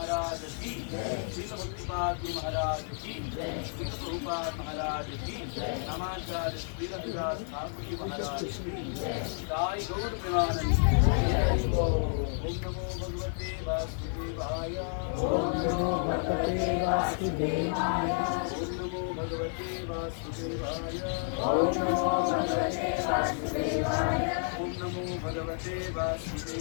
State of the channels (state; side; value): silent; right; 57 dB below the other